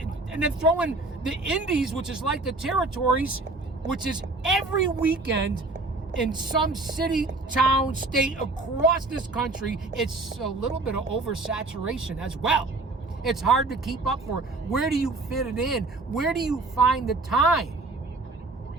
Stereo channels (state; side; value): quieter; left; 3.3 dB